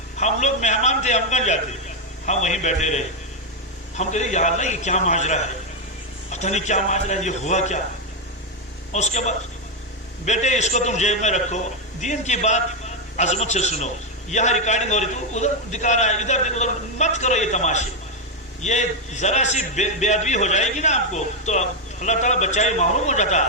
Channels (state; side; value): normal; both; correlation 0.03